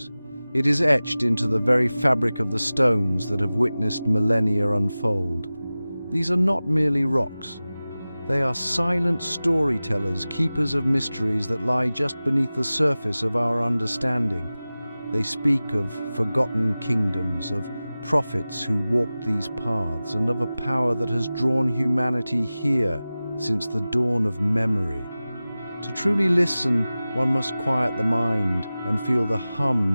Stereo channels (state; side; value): inverted; both; correlation -0.97